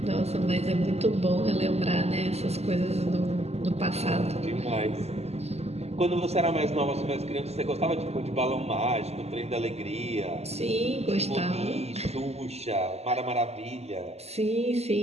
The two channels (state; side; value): late; left; 0.30 ms